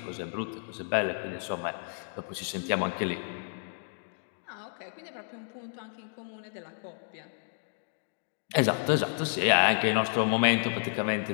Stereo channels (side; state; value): right; silent; digital silence